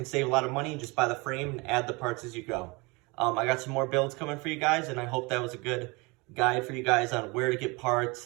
save a lot of money and just buy the frame and add the parts as you go. I got some more builds coming for you guys, and I hope that was a good guide for you guys on where to get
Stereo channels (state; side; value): quieter; left; 26.4 dB